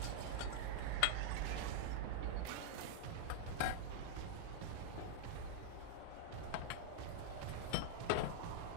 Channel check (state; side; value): different; both; correlation -0.01